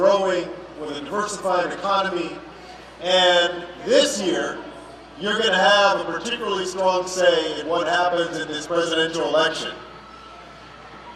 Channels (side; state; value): both; identical; correlation 1.00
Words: with a diversified economy. And this year, you're going to have a particularly strong say in what happens in this presidential election.